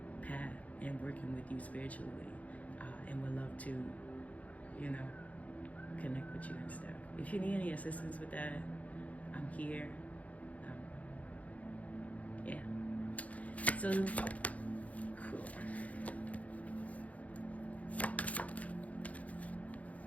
path and working with you spiritually, and would love to, connect with you and stuff. If you need any assistance with that, I'm here. Yeah. So, cool.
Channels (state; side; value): late; right; 0.069 ms